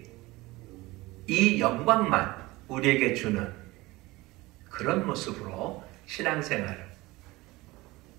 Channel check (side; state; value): left; quieter; 20.6 dB